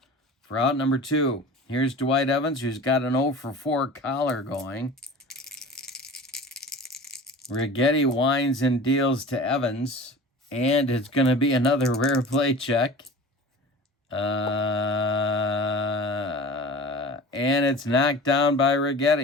for out number 2. Here's Dwight Evans, who's got an 0 for 4 collar going. Righetti winds and deals to Evans, and it's going to be another rare play check. And it's knocked down by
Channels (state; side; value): normal; both; correlation 0.38